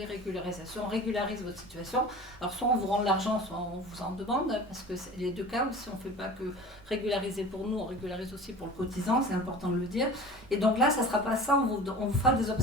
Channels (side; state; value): both; normal; correlation 0.39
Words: régularisation. On régularise votre situation. Alors soit on vous rend l'argent, soit on vous en demande, parce que c'est les deux cas aussi, on fait pas que régulariser pour nous, on régularise aussi pour le cotisant, c'est important de le dire. Et donc là, ça sera pas ça, on vous fera des